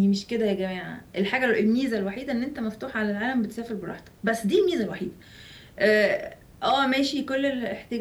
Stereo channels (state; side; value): identical; both; correlation 1.00